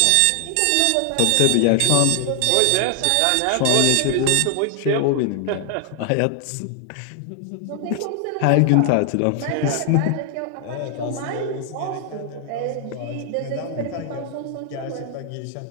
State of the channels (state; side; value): different; both; correlation 0.00